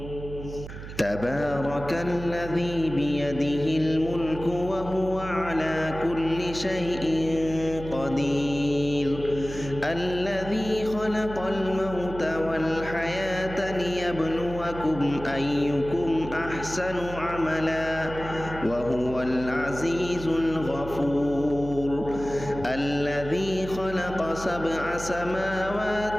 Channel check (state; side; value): noise; right; hum, 11 dB below the sound